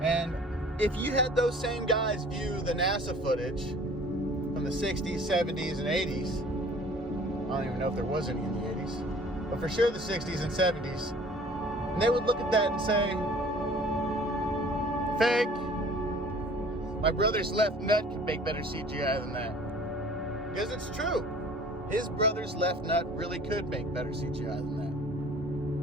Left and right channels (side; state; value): both; normal; correlation 0.49